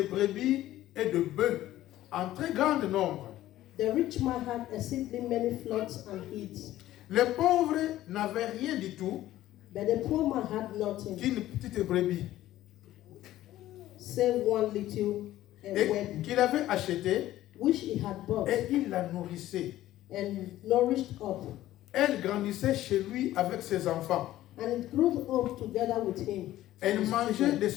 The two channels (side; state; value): right; quieter; 14.4 dB